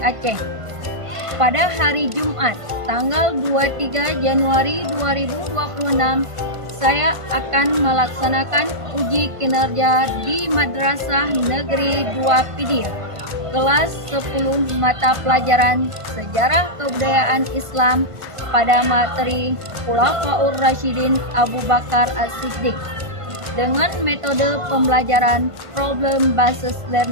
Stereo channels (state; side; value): late; left; 1.5 ms